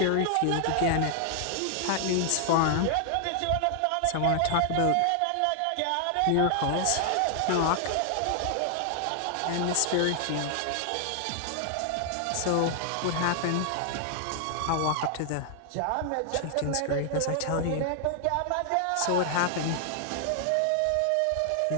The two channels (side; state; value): both; different; correlation 0.00